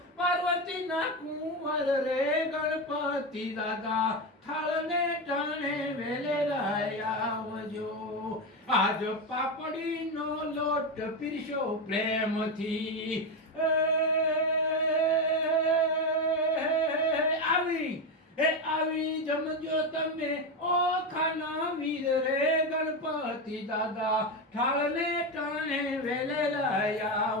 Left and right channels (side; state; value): both; normal; correlation 0.13